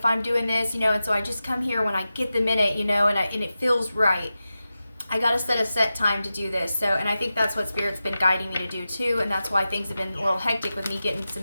I'm doing this, you know, and so I just come here when I get the minute, you know, and it feels right. I got to set a set time to do this. So, and I think that's what Spirit's been guiding me to do too. And that's why things have been a little hectic with me getting some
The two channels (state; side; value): inverted; both; correlation -0.93